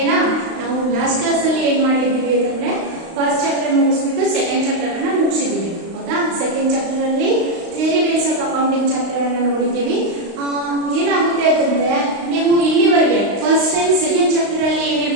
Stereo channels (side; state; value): left; late; 35 ms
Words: na? ನಾವು last class ಅಲ್ಲಿ ಏನು ಮಾಡಿದ್ದೀವಿ ಅಂದ್ರೆ first chapter ಮುಗಿಸ್ಬಿಟ್ಟು second chapter ಅನ್ನ ಮುಗಿಸಿದ್ದೀವಿ. ಹೌದಾ? second chapter ಅಲ್ಲಿ theory base of accounting chapter ಅನ್ನ ನೋಡಿದ್ದೀವಿ. ಏನಾಗುತ್ತೆ ಅಂತಂದ್ರೆ ನೀವು ಇಲ್ಲಿವರೆಗೆ first and second chapter ಅಲ್ಲಿ